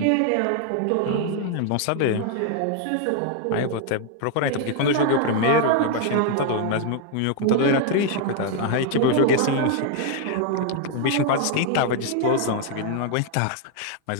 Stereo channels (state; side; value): different; both; correlation 0.00